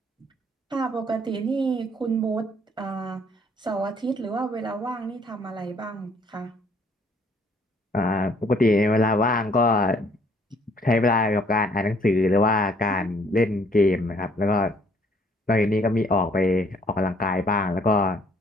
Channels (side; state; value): both; normal; correlation 0.62